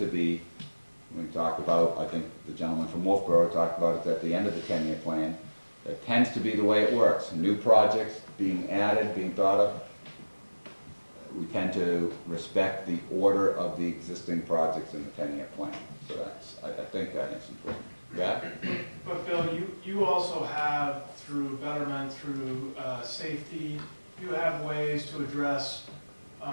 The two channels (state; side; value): inverted; both; correlation -1.00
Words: be, we talked about, I think the gentleman from Wolfboro talked about it at the end of the 10-year plan, it tends to be the way it works. New projects being added, being thought of, we tend to respect the order of the existing projects in the 10-year plan. So that's, I think that is important. Yeah? But Bill, you also have, through betterment, through safety, you have ways to address